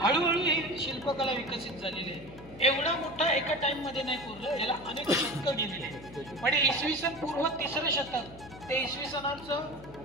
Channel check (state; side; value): noise; left; hum, 19 dB below the sound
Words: हळूहळू ही शिल्पकला विकसित झालेली आहे. एवढा मोठा एका टाइम मध्ये नाही कोरलं, याला अनेक शतकं गेलेली आहे. म्हणजे इसवी सन पूर्व 3रं शतक ते इसवी सनाचं